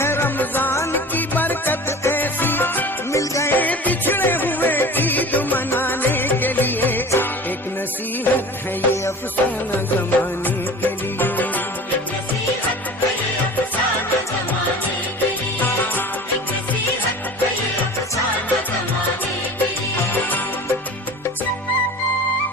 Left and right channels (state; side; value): normal; both; correlation 0.39